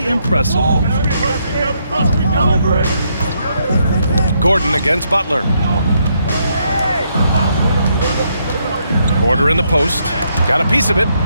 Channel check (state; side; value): inverted; both; correlation -0.75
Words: impressive. Gordon against Butler. Porter in the post. Got a piece of it